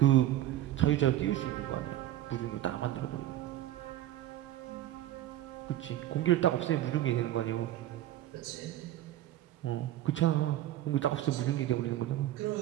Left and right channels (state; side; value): quieter; left; 13.4 dB